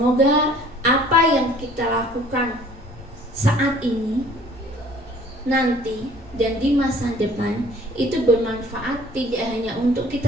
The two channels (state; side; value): normal; both; correlation 0.53